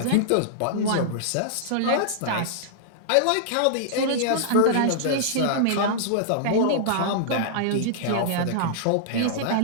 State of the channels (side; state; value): both; different; correlation -0.02